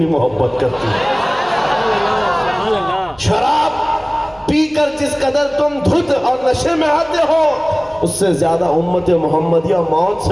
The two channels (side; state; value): left; noise; hum, 26 dB below the sound